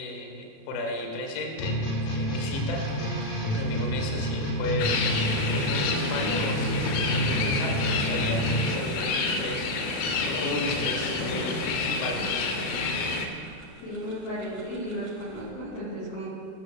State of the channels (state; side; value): late; right; 37 ms